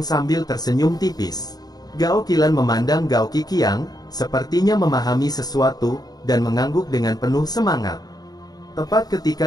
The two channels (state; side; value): late; right; 0.19 ms